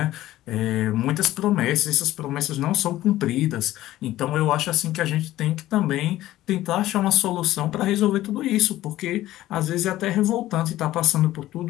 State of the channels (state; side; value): quieter; right; 15.0 dB